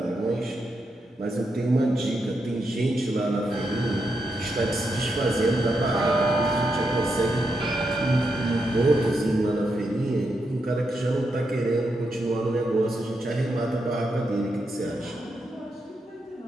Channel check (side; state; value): both; normal; correlation 0.83